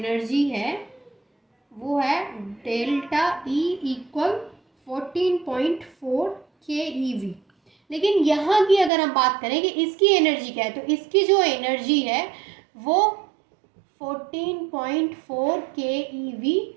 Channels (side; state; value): left; drops out; at 8.9 s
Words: है वो है डेल्टा ई इक्वल 14.4 KeV। लेकिन यहाँ की अगर हम बात करें कि इसकी एनर्जी क्या है, तो इसकी जो एनर्जी है वो 14.4 KeV